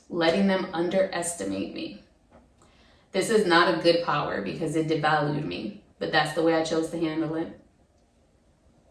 letting them underestimate me. This is not a good power because it devalued me, but that's the way I chose to handle it.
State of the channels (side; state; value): both; identical; correlation 1.00